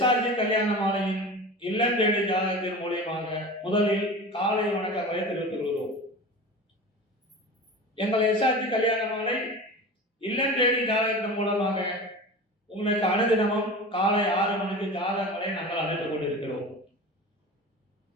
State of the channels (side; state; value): both; normal; correlation 0.33